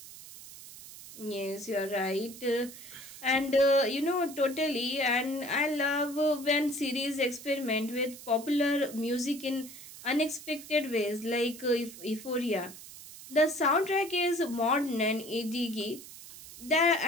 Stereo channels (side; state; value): right; noise; hiss, 15 dB below the sound